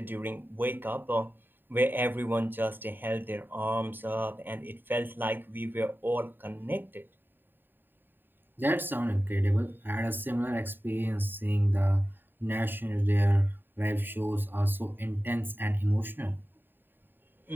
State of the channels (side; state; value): left; late; 0.094 ms